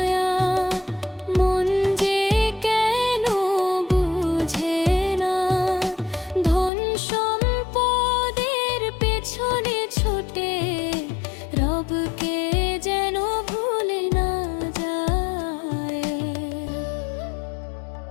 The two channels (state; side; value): drops out; right; at 6.7 s